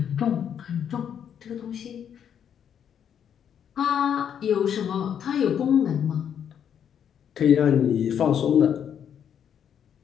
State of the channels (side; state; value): right; quieter; 8.6 dB